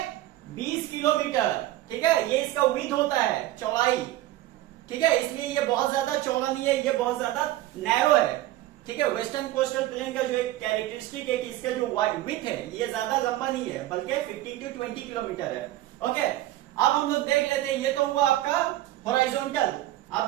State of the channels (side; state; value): left; quieter; 15.2 dB